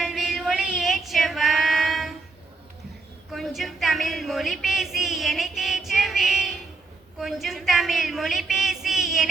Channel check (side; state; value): left; quieter; 3.8 dB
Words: ஒளியேற்றவா. கொஞ்சம் தமிழ் மொழி பேசி என்னை தேற்றவே. கொஞ்சம் தமிழ் மொழி பேசி